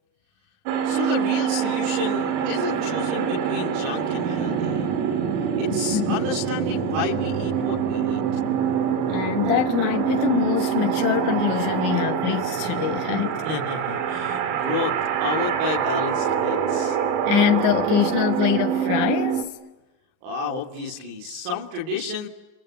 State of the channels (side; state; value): left; late; 38 ms